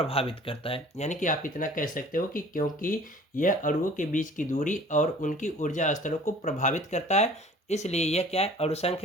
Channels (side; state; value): both; normal; correlation 0.48